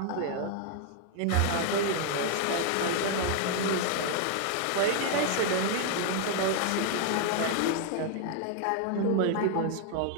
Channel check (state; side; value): different; both; correlation 0.00